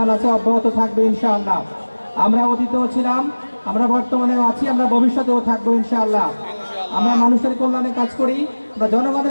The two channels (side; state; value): both; inverted; correlation -1.00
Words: আছে, অব্যাহত থাকবে ইনশাআল্লাহ। আমরা অতীতেও ছিলাম, আমরা বর্তমানেও আছি, আমরা ভবিষ্যতেও থাকবো ইনশাআল্লাহ। আমরা মানুষের কল্যাণে কাজ করি, আমরা